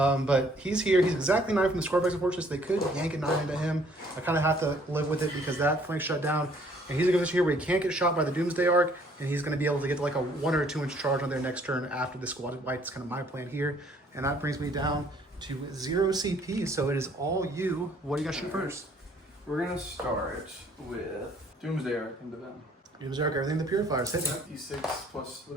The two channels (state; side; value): normal; both; correlation 0.61